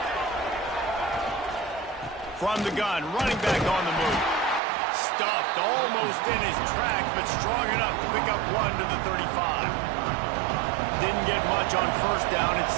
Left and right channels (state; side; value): drops out; left; at 4.6 s